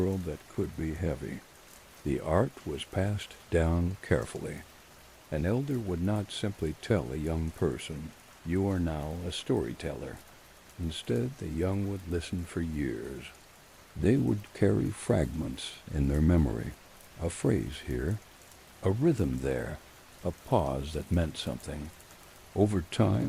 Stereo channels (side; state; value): both; identical; correlation 1.00